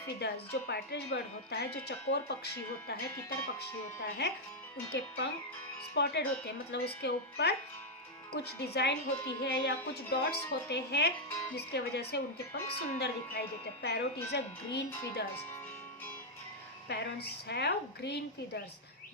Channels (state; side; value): normal; both; correlation -0.01